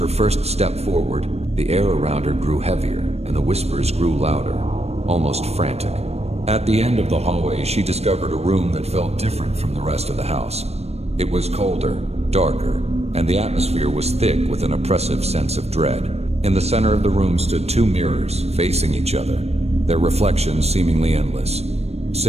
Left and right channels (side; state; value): left; late; 0.31 ms